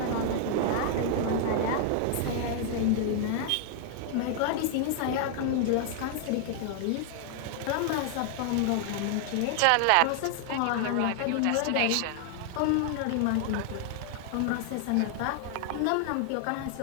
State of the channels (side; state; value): both; different; correlation 0.00